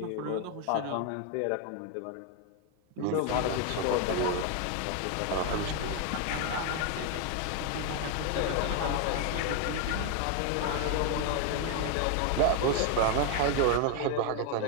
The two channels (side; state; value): both; different; correlation 0.01